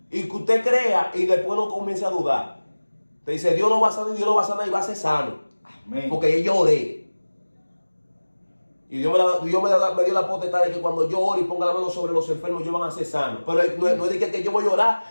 Y que usted crea y después no comience a dudar. Te dice, Dios no va a sanar, Dios no va a sanar y va a ser sano. Amén. Porque yo oré. Y Dios me dio la potestad de que cuando yo ore y ponga la mano sobre los enfermos, ellos van a ser sanos. Pero no es de que yo voy a orar,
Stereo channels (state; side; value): inverted; both; correlation -1.00